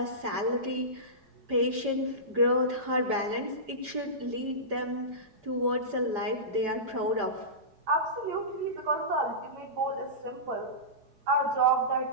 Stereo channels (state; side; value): late; left; 5.0 ms